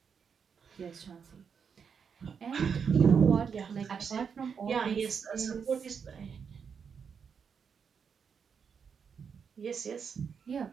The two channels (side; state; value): left; quieter; 6.5 dB